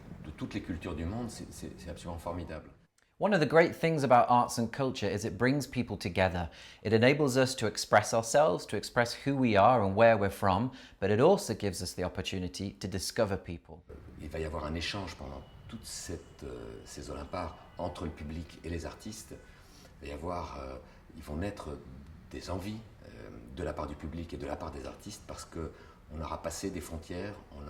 toutes les cultures du monde, c'est absolument formidable. One of the great things about arts and culture is it brings people together. It enables us to express ourselves, to express who we are and where we're from, but it also gives us the opportunity to discover people. Il va y avoir un échange pendant toutes ces Olymparts entre le public et les artistes. Ils vont naître des envies de la part du public et de la part des artistes parce qu'on aura passé des frontières, on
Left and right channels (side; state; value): both; identical; correlation 1.00